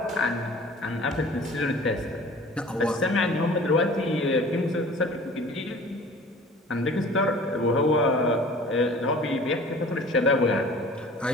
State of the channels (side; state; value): both; normal; correlation 0.45